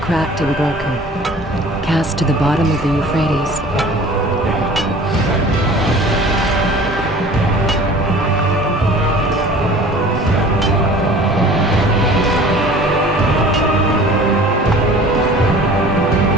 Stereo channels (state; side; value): normal; both; correlation 0.45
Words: and broken, cast to the bottom of the Euphrates.